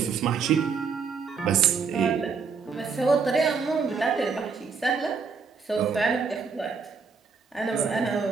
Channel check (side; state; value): left; quieter; 5.4 dB